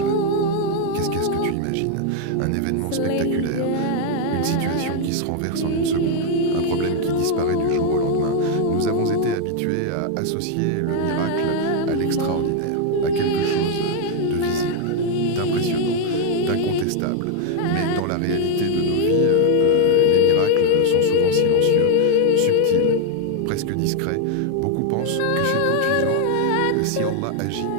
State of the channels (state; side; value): different; both; correlation 0.00